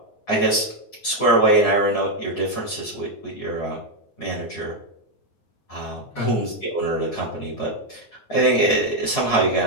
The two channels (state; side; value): late; right; 9.5 ms